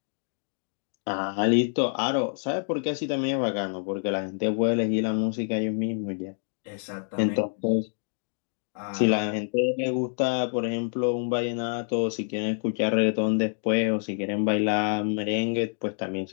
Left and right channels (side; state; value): right; silent; digital silence